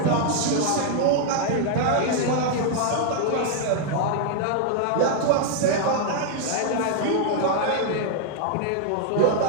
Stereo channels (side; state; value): both; different; correlation 0.00